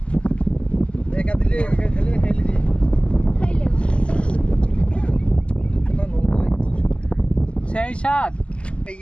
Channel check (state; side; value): late; right; 0.054 ms